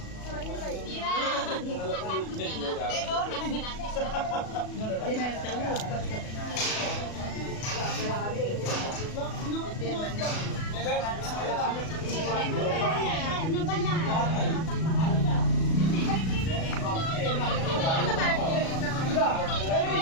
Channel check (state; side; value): late; right; 37 ms